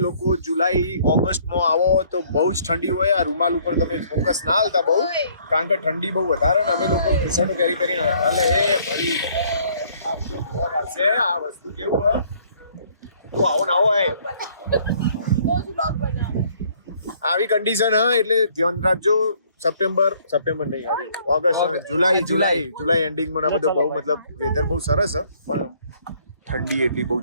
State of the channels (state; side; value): inverted; both; correlation -0.62